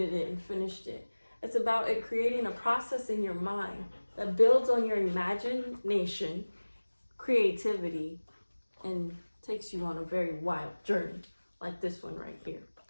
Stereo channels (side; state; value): both; inverted; correlation -1.00